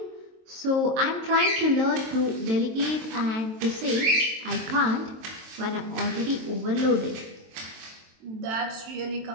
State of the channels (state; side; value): late; left; 23 ms